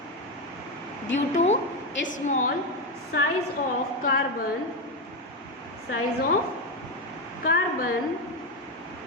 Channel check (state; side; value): normal; both; correlation 0.11